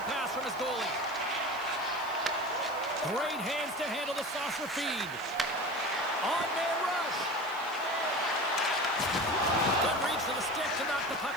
pass from his goalie. Great hands to handle the saucer feed. On-man rush. Good reach to the stick to knock the puck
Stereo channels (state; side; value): noise; right; hiss, 21 dB below the sound